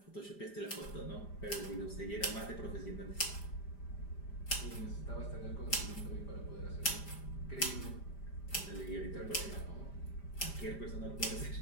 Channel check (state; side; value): late; right; 5.0 ms